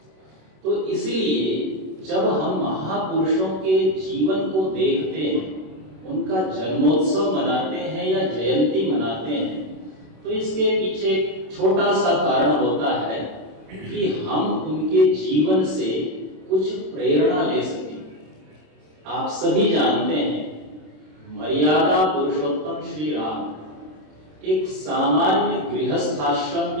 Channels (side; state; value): left; late; 27 ms